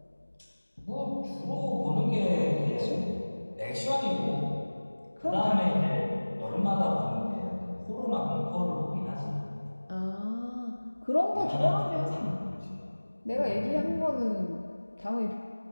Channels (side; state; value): both; inverted; correlation -1.00